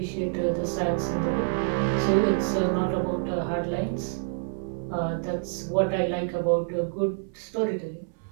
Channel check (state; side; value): silent; left; 60 dB below the other